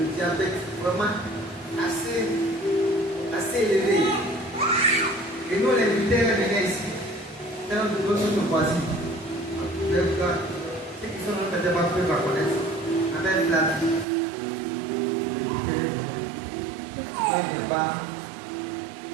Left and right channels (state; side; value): drops out; left; at 14.1 s